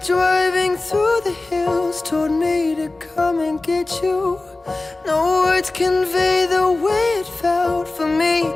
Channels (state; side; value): quieter; right; 3.1 dB